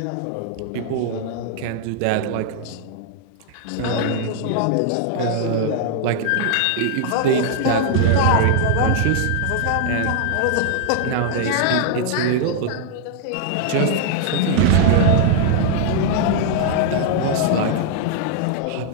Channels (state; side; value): different; both; correlation 0.00